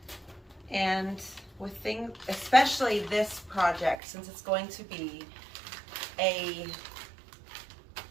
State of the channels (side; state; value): left; drops out; at 4.0 s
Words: And with things, especially this project, since it's going to be a